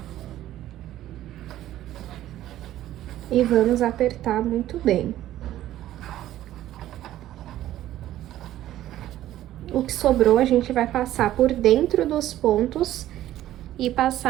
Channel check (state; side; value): quieter; left; 13.5 dB